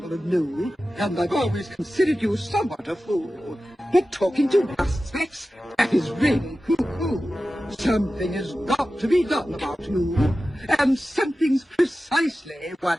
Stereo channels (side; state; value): both; normal; correlation 0.95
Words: of Newell, and I've always considered you somewhat a fool. But talking to dust specks, that is really hoo-hoo. Something has got to be done about you, and something's precisely